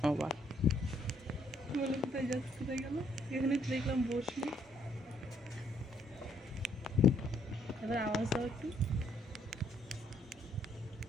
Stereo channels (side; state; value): both; normal; correlation 0.69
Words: আবার বলে কোথায় যাচ্ছে, কোথায় গেল? এখানে তো দেখলাম বসলি। এবার আওয়াজ দাও একটু।